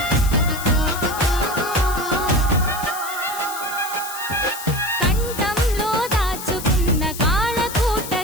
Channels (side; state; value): left; noise; hiss, 10 dB below the sound